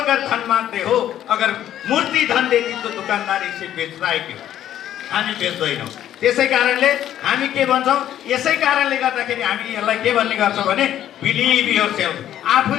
धन माग्दै हो, अगर मूर्ति धन देती तो दुकानदार इसे बेच्दा है क्यों? हामी बेच्दैनौँ। त्यसै कारणले हामी के भन्छौँ, यसै कारणले गर्दाखेरि हामी यसलाई के भन्ने गर्छौँ भने बिलिभ योरसेल्फ।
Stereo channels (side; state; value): right; quieter; 11.5 dB